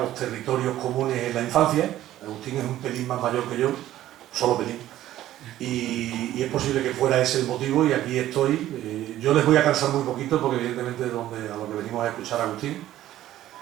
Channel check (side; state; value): left; quieter; 13.6 dB